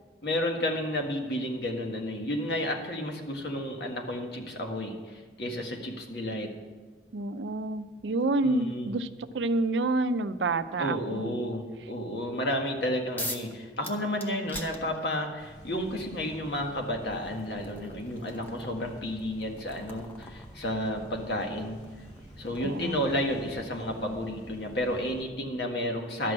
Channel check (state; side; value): normal; both; correlation 0.34